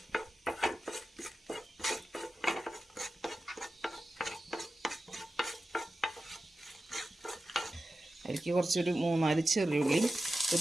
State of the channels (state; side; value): normal; both; correlation 0.93